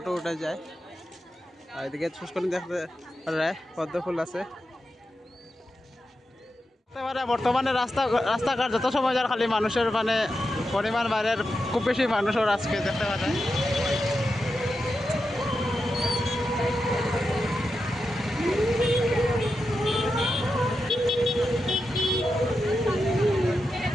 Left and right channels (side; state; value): both; normal; correlation 0.88